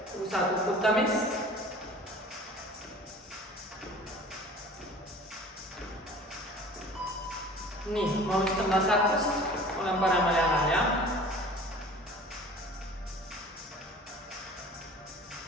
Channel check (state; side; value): normal; both; correlation 0.44